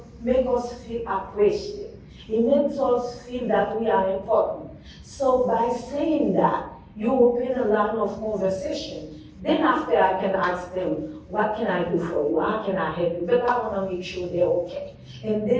feel appreciated. It makes us feel that we are important. So by saying that, you open a line of conversation. Then after I can ask them, what can I do for you? How can I help you? But I want to make sure they're okay. And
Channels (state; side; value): identical; both; correlation 1.00